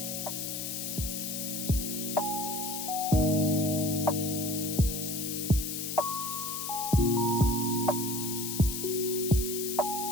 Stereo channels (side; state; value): left; noise; hiss, 4 dB below the sound